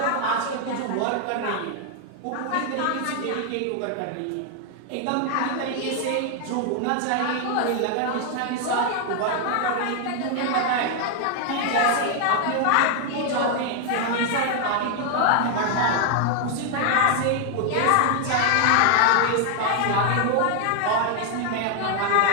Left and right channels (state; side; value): different; both; correlation 0.00